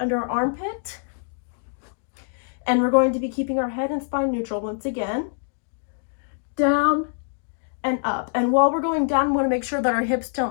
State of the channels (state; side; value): silent; right; digital silence